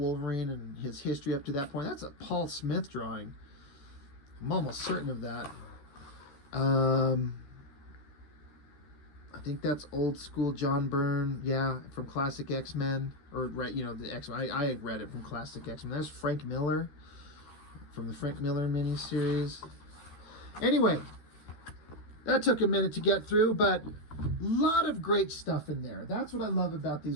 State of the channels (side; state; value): right; late; 13 ms